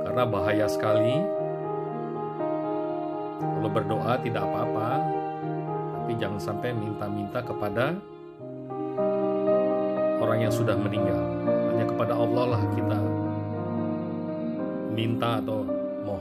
karena bahaya sekali. Kalau berdoa tidak apa-apa, tapi jangan sampai minta-minta kepada orang yang sudah meninggal. Hanya kepada Allah lah kita minta atau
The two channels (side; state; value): both; identical; correlation 1.00